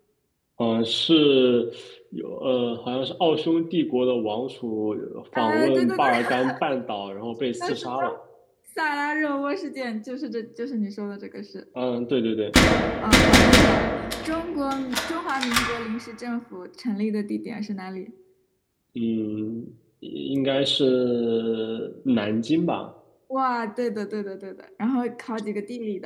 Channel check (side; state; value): both; identical; correlation 1.00